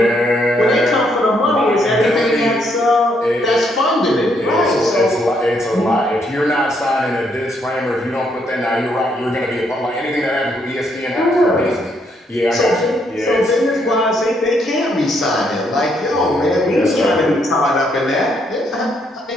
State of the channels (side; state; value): both; normal; correlation 0.73